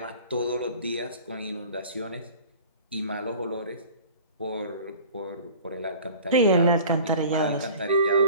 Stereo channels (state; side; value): inverted; both; correlation -0.44